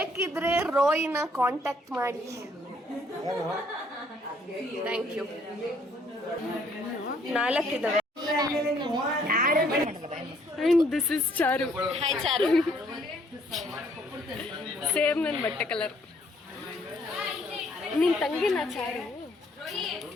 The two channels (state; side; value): normal; both; correlation 0.65